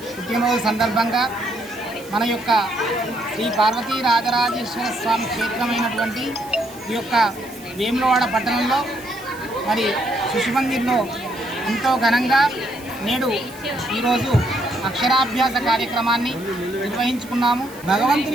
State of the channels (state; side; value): noise; right; hiss, 20 dB below the sound